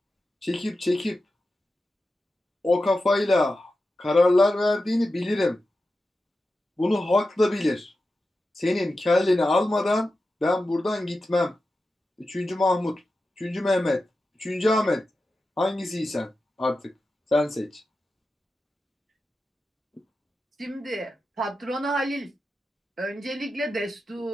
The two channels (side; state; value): both; normal; correlation 0.92